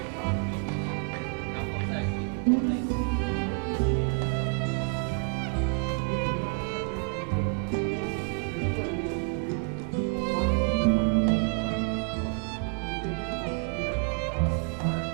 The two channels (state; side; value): quieter; left; 36.2 dB